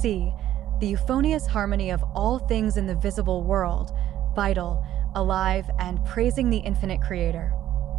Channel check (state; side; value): quieter; left; 12.5 dB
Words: see, the euphonious harmony of all things in the visible world, vital, alive, and praising the infinite Creator.